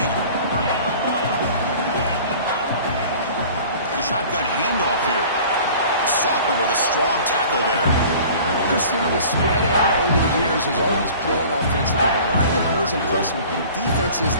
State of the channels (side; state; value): both; inverted; correlation -0.45